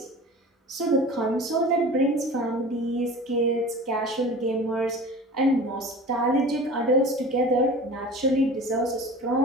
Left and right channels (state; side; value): normal; both; correlation 0.38